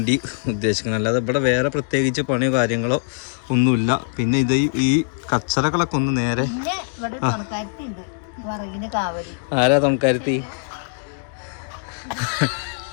ഉദ്ദേശിക്കുന്നത്. അല്ലാതെ ഇവിടെ വേറെ പ്രത്യേകിച്ച് പണിയോ കാര്യങ്ങളോ ഒന്നുമില്ല. പിന്നെ ഇത് ഈ കച്ചറകളൊക്കെ ഒന്ന് നേരെ ആരാ തമക്കാരുത്തി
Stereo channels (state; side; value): silent; right; digital silence